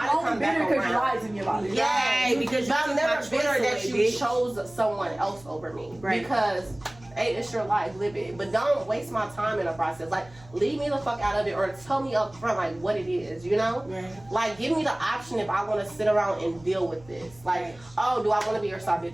to come back around. Lies in your body. Yeah, because I'm never bitter that you chose someone else over me. Right. Because hey, it's your life, live it. But don't waste my time in the process. Like, leave me the fuck out of it, or tell me up front like what it is, you know? Right. Like, give me the option if I want to sit around and deal with this. Like, oh, do I want to be your side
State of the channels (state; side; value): noise; right; hum, 24 dB below the sound